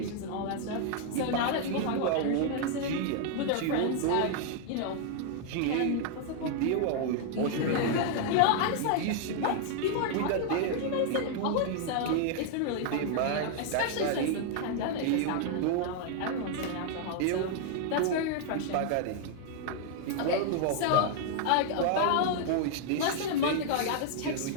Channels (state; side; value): different; both; correlation 0.00